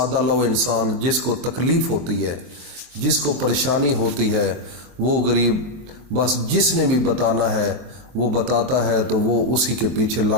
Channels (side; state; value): left; late; 23 ms